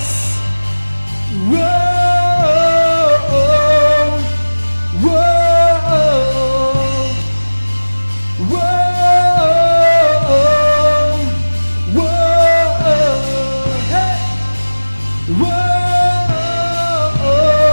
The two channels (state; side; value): inverted; both; correlation -1.00